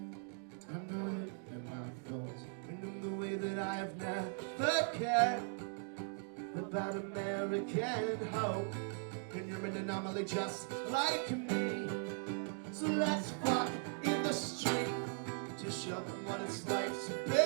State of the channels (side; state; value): left; silent; 52 dB below the other